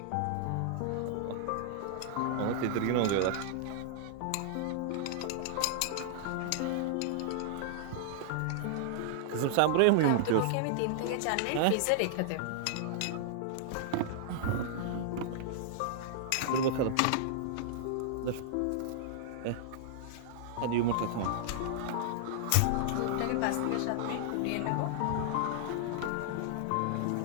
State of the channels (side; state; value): both; different; correlation -0.01